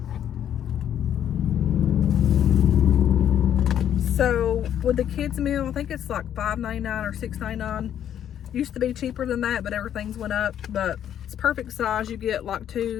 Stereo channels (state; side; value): quieter; right; 10.0 dB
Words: So with the kids meal, I think it's like $5.99 or $6.99. Used to be cheaper than that, but everything's went up. But it's perfect size. You get like